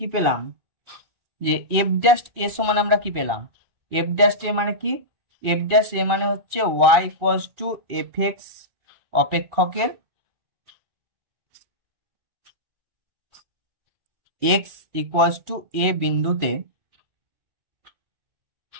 পেলাম যে এফ ড্যাশ এ সমান আমরা কি পেলাম, এফ ড্যাশ এ মানে কি, এফ ড্যাশ এ মানে হচ্ছে y equals to f x অপেক্ষকের এক্স ইকুয়ালস টু এ বিন্দুতে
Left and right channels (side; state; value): left; late; 2.4 ms